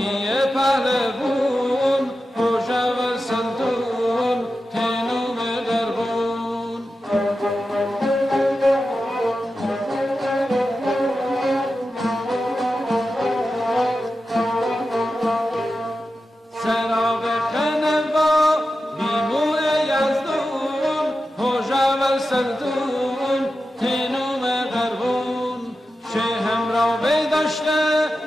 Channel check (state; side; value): normal; both; correlation 0.91